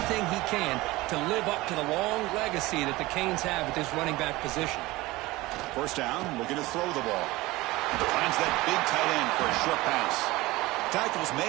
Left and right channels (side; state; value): left; quieter; 19.9 dB